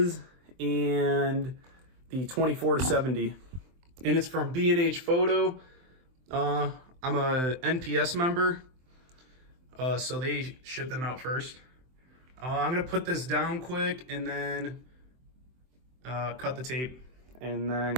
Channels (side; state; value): left; late; 23 ms